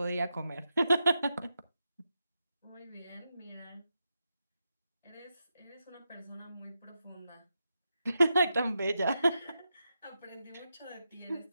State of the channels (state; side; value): inverted; both; correlation -0.87